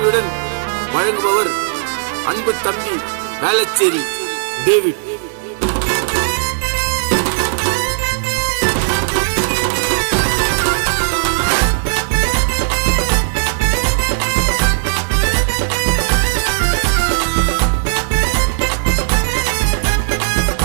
வழங்குபவர் அன்பு தம்பி வேளச்சேரி டேவிட்.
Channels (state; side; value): silent; left; 61 dB below the other